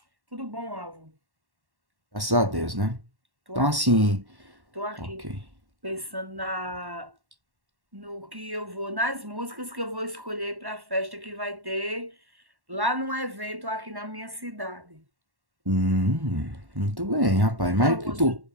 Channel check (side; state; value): left; late; 1.1 ms